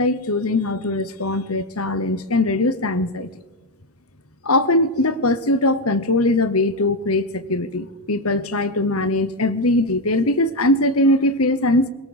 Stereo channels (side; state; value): both; normal; correlation 0.09